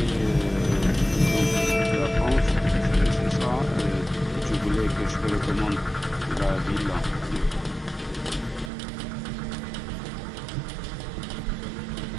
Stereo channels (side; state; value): left; drops out; at 8.7 s